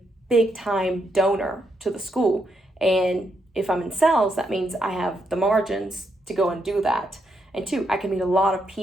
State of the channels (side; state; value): both; normal; correlation 0.79